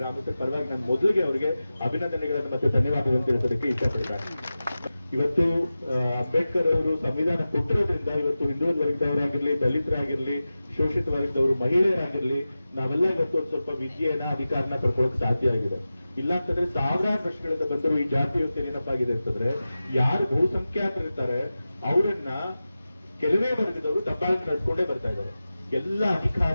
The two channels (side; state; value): both; inverted; correlation -0.95